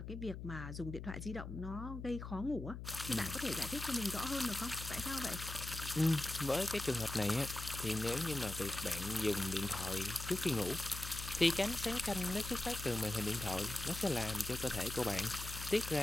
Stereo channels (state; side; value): noise; left; hum, 8 dB below the sound